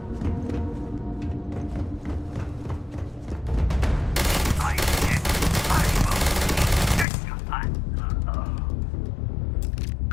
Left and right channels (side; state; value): right; drops out; at 7.1 s